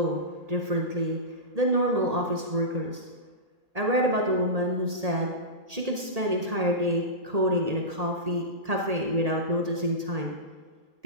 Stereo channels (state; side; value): late; left; 1.8 ms